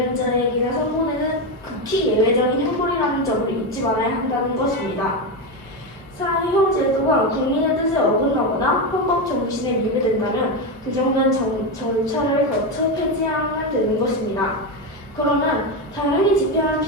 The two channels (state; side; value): normal; both; correlation 0.12